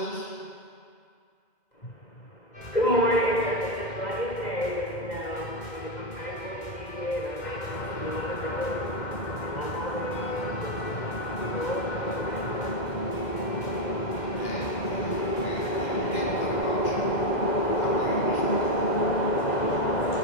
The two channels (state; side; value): late; right; 2.1 ms